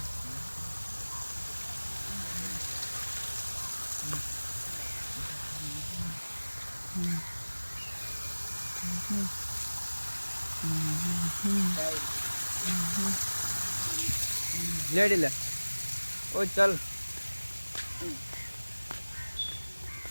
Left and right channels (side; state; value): both; inverted; correlation -1.00